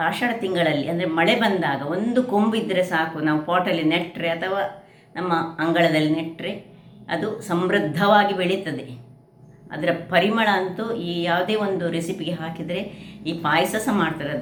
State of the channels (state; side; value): identical; both; correlation 1.00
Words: ಆಷಾಢ ತಿಂಗಳಲ್ಲಿ ಅಂದರೆ ಮಳೆ ಬಂದಾಗ ಒಂದು ಕೊಂಬಿದ್ದರೆ ಸಾಕು, ನಾವು ಪಾಟಲ್ಲಿ ನೆಟ್ಟರೆ ಅಥವಾ ನಮ್ಮ ಅಂಗಳದಲ್ಲಿ ನೆಟ್ಟರೆ ಅದು ಸಮೃದ್ಧವಾಗಿ ಬೆಳೀತದೆ. ಅದರ ಪರಿಮಳ ಅಂತೂ ಈ ಯಾವುದೇ ಒಂದು ರೆಸಿಪಿಗೆ ಹಾಕಿದರೆ, ಈ ಪಾಯಸ ಸಹ ಮಾಡ್ತಾರೆ,